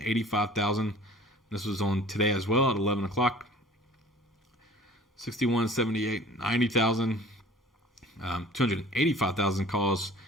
This was on today as well at 11 o'clock. 61.78, 90,000. 285,000 calls,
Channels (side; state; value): both; normal; correlation 0.47